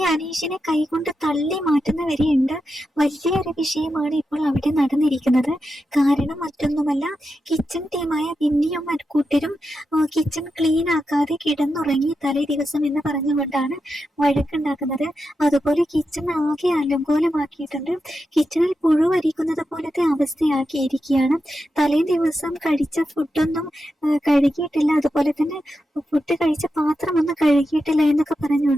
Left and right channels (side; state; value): both; normal; correlation 0.88